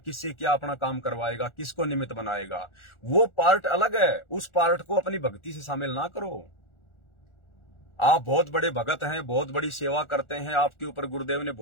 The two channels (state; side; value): late; right; 1.4 ms